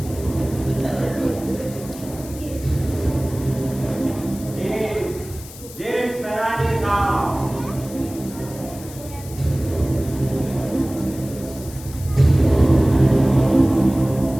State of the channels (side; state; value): left; noise; hiss, 17 dB below the sound